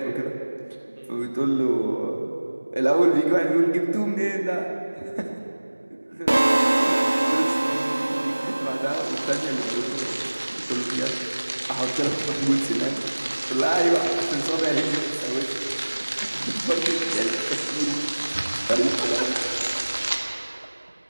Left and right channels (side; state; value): both; inverted; correlation -1.00